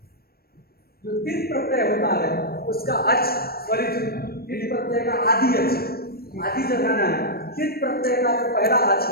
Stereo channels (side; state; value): right; late; 0.44 ms